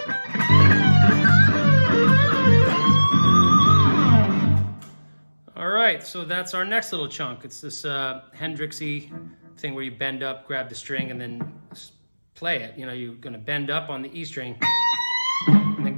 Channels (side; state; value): both; inverted; correlation -1.00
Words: All right, so that's our next little chunk. It's this Hendrix-y thing where you bend up, grab the string, and then play it. You know, you're gonna bend up on the E string, and then